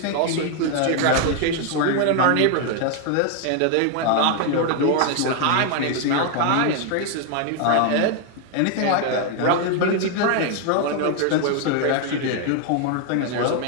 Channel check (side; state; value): both; different; correlation 0.00